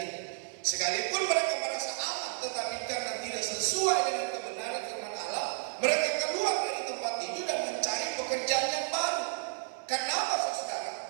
Sekalipun mereka merasa aman, tetapi karena tidak sesuai dengan kebenaran firman Allah, mereka keluar dari tempat itu dan mencari pekerjaan yang baru. Karena apa, saudara?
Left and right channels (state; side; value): silent; left; 57 dB below the other